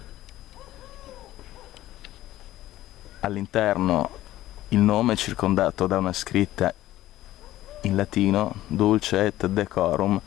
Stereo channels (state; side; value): quieter; right; 14.9 dB